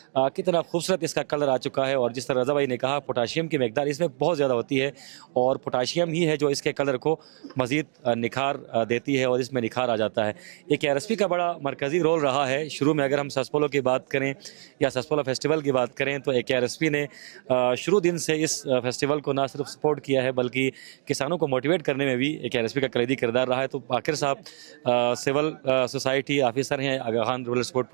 کتنا خوبصورت اس کا کلر آ چکا ہے. اور جس طرح رضا بھائی نے کہا پوٹاشیم کی مقدار اس میں بہت زیادہ ہوتی ہے, اور پوٹاشیم ہی ہے جو اس کے کلر کو مزید نکھار دیتی ہے, اور اس میں نکھار آ جاتا ہے. ایک KRSP کا بڑا مرکزی رول رہا ہے. شروع میں اگر ہم سسپولو کی بات کریں یا سسپولو فیسٹیول کی بات کریں تو KRSP نے شروع دن سے اس فیسٹیول کو نہ صرف سپورٹ کیا ہے بلکہ کسانوں کو موٹیویٹ کرنے میں بھی KRSP کا کلیدی کردار رہا ہے. تو عاقر صاحب سول سوسائٹی آفیسر ہیں آغا خان رورل سپورٹ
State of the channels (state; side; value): silent; left; digital silence